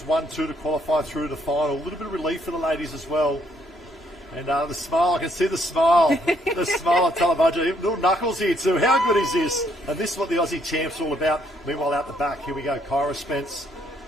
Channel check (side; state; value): both; normal; correlation 0.70